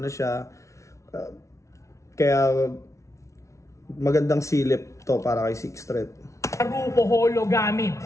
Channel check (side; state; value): right; late; 0.14 ms